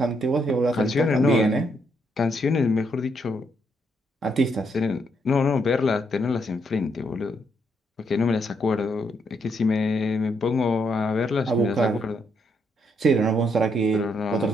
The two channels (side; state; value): both; normal; correlation 0.75